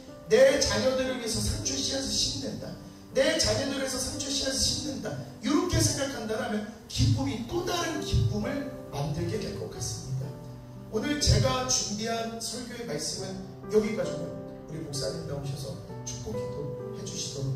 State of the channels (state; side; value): identical; both; correlation 1.00